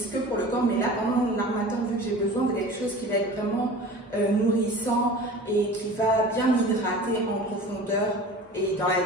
que pour le corps, mais là, pendant l'harmattan, vu que j'ai besoin de quelque chose qui va être vraiment nourrissant et qui va bien m'hydrater en profondeur et dans la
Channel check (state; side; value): normal; both; correlation 0.39